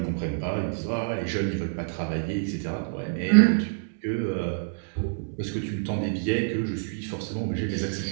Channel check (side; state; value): left; silent; digital silence